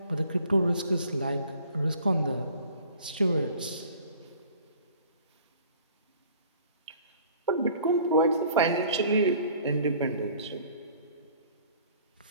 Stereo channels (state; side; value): inverted; both; correlation -0.52